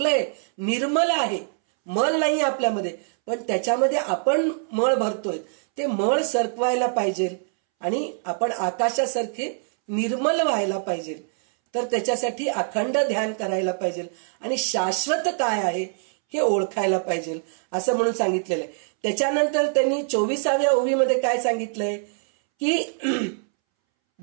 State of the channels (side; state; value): left; silent; 63 dB below the other